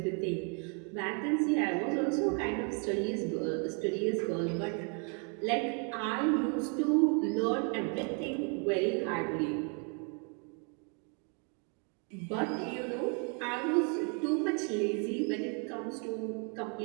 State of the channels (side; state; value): left; quieter; 38.1 dB